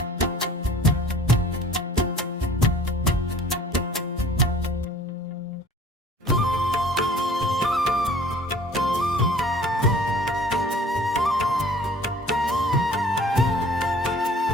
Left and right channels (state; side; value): normal; both; correlation 0.50